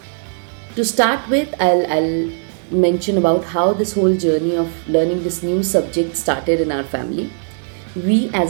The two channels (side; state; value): left; silent; 64 dB below the other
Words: To start with, I'll mention about how this whole journey of learning this new subject started in our family. We